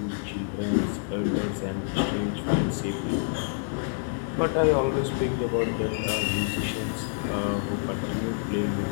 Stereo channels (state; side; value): silent; right; digital silence